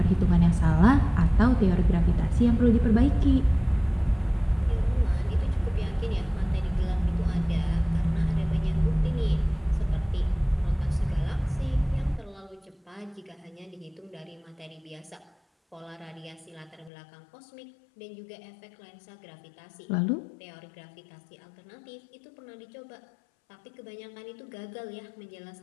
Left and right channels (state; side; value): drops out; right; at 16.9 s